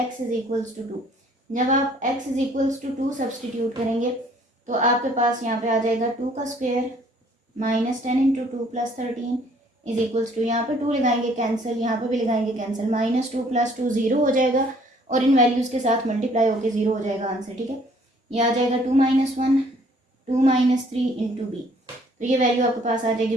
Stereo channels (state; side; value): normal; both; correlation 0.60